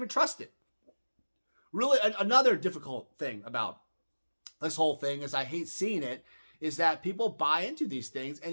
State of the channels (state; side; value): inverted; both; correlation -1.00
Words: trust it. Really, another difficult thing about this whole thing is, I hate seeing it, is that people buy into these things